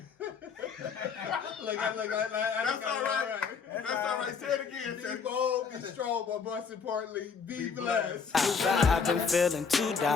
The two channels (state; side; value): quieter; right; 5.8 dB